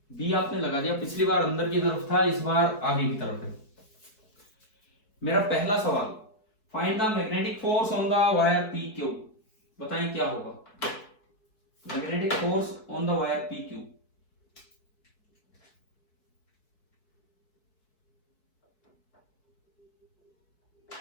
बी आपने लगा दिया, पिछली बार अंदर की तरफ था, इस बार आगे की तरफ है। मेरा पहला सवाल, find the magnetic force on the wire P Q, बताएं क्या होगा magnetic force on the wire P Q.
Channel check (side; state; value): right; late; 4.6 ms